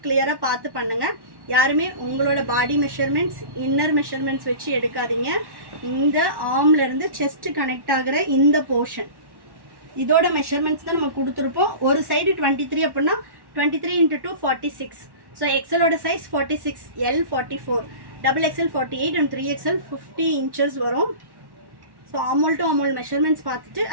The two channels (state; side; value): late; left; 1.1 ms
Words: கிளியராக பார்த்து பண்ணுங்கள். யாருமே உங்களோட பாடி மெஷர்மெண்ட்ஸ், இன்னர் மெஷர்மெண்ட்ஸ் வச்சு எடுக்காதீங்க. இந்த ஆர்ம்லேருந்து செஸ்ட் கனெக்ட் ஆகிற இந்த போர்ஷன் இதோட மெஷர்மெண்ட்ஸ் தான் நம்ம கொடுத்துருப்போம். ஒரு சைடு 23 அப்படின்னா 23 × 2 46. ஸோ எக்ஸலோட size 46, L 44, XXL 48 and 3XL 50 inches வரும். So armhole to armhole measurements பார்த்துட்டு